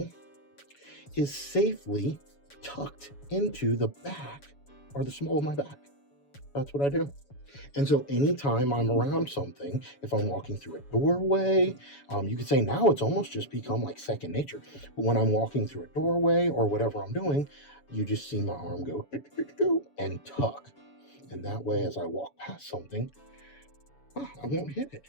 is safely tucked into the back or the small of my back. That's what I do. And so anytime I'm around something, if I'm walking through a doorway, you could say now it's almost just become like second nature. But when I'm walking through a doorway or whatever I'm doing, you just see my arm go and tuck. And that way, as I walk past something, I won't hit it.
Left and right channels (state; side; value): late; right; 7.1 ms